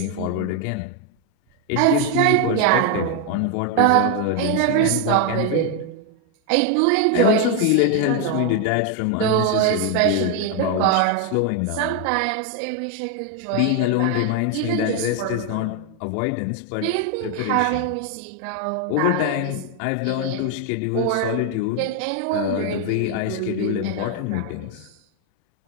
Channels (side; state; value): both; different; correlation 0.01